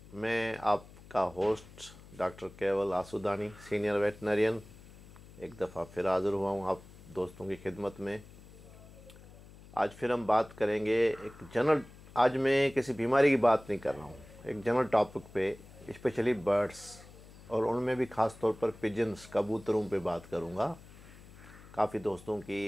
मैं आपका होस्ट डॉक्टर केवल आसूदानी, सीनियर वेटनरियन, एक दफ़ा फिर हाज़िर हुआ हूँ आप दोस्तों की खिदमत में। आज फिर हम बात करेंगे एक जनरल। आज मैं किसी बीमारी की बात नहीं कर रहा हूँ, एक जनरल टॉपिक पे, स्पेशली बर्ड्स और उनमें भी ख़ास तौर पर पिजन्स, कबूतरों पे बात करूँगा। काफ़ी दोस्तों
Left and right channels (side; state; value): left; noise; hum, 20 dB below the sound